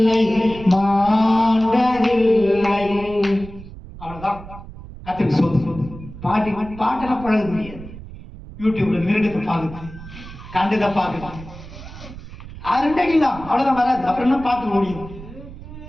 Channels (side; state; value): right; noise; rumble, 15 dB below the sound